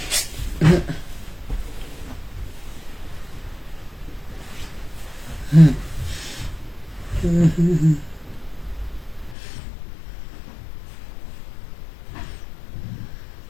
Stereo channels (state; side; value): drops out; right; at 9.3 s